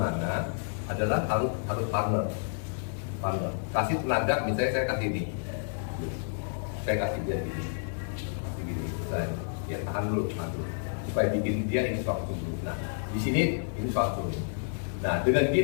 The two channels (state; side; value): silent; right; 58 dB below the other